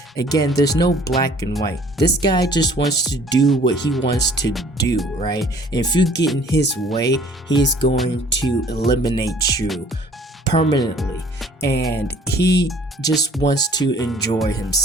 Again, there's no black and white. This guy just wants to do what he wants to do, right? And if you get in his way, he's going to eliminate you permanently. And he just wants to enjoy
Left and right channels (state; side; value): normal; both; correlation 0.54